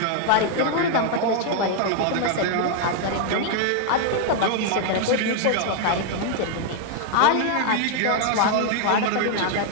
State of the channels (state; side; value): different; both; correlation 0.00